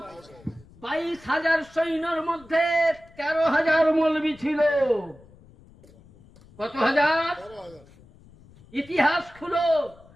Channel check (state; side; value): noise; left; rumble, 25 dB below the sound